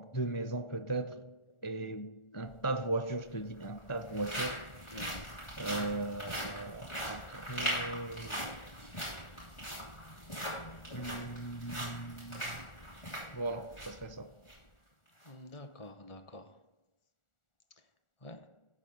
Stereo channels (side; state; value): right; late; 1.4 ms